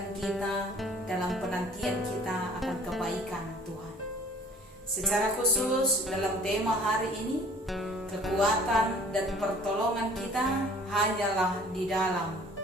kita dalam penantian kita akan kebaikan Tuhan. Secara khusus dalam tema hari ini, kekuatan dan pertolongan kita hanyalah di dalam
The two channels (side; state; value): both; normal; correlation 0.51